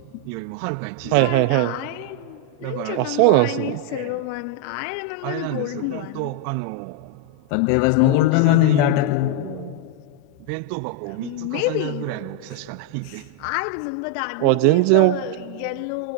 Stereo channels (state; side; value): different; both; correlation 0.01